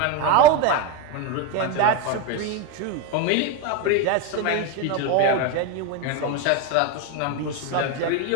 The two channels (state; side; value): different; both; correlation 0.03